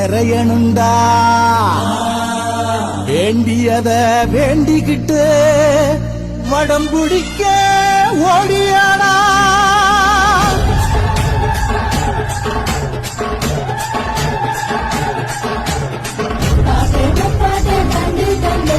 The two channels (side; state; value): both; identical; correlation 1.00